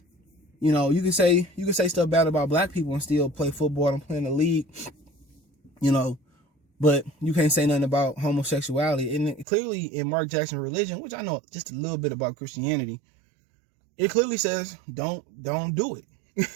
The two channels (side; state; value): left; drops out; at 9.5 s